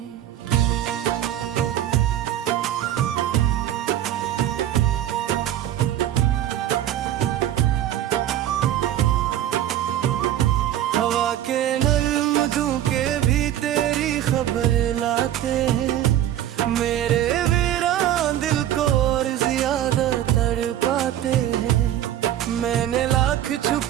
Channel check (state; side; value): quieter; left; 11.9 dB